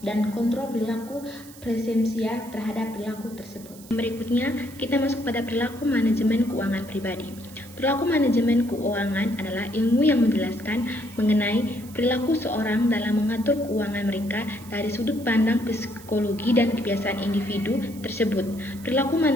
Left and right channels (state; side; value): noise; right; hiss, 20 dB below the sound